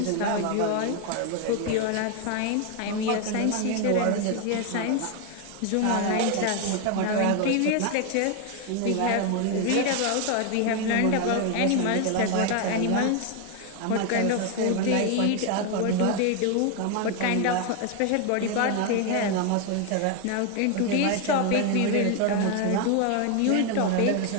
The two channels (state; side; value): different; both; correlation 0.01